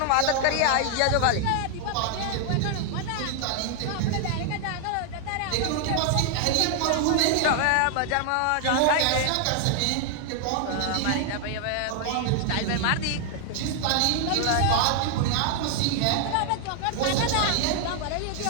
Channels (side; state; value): both; different; correlation 0.00